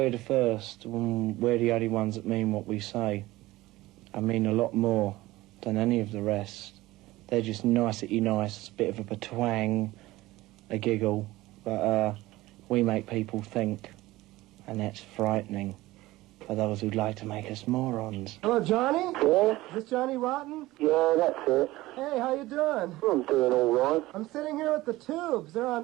the first, we're the only ones that mean what we say. I mean a lot more than any of the rest. They're just nicety nice, bit of a twang, a giggle, but we make people think, and that's frightening for those who'd like to make us morons. Hello, Johnny? Yeah? Is this Johnny Rotten? Yeah, that's it. Hey, how you doing? I'm doing all right. I'm sitting here with the Tubes. They're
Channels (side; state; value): left; quieter; 18.2 dB